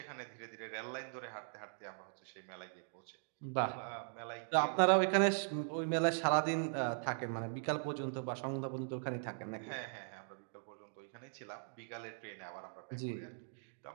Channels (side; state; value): left; silent; digital silence